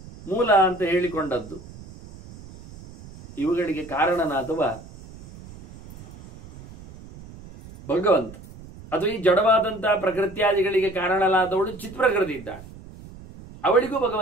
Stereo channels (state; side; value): noise; right; rumble, 18 dB below the sound